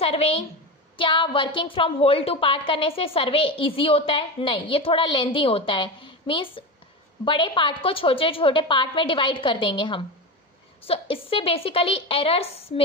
क्या working from whole to part करने से सर्वे इजी होता है? नहीं, ये थोड़ा लेंदी होता है। मीन्स बड़े पार्ट को छोटे छोटे पार्ट में डिवाइड कर देंगे हम। सो इससे बेसिकली एरर्स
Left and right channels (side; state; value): both; normal; correlation 0.21